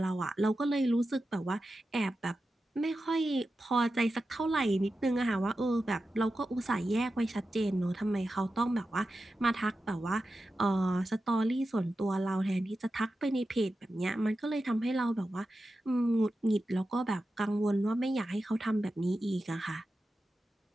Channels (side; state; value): both; normal; correlation 0.92